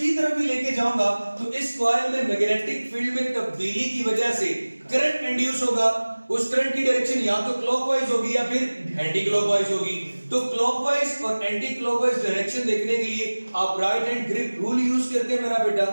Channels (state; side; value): inverted; both; correlation -1.00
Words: तरफ भी लेके जाऊंगा तो इस कॉइल में मैग्नेटिक फील्ड में तब्दीली की वजह से करंट इंड्यूस होगा। उस करंट की डायरेक्शन या तो क्लॉकवाइज होगी या फिर एंटी क्लॉकवाइज होगी। तो क्लॉकवाइज और एंटी क्लॉकवाइज डायरेक्शन देखने के लिए आप right hand grip rule use करते हैं मेरा बेटा।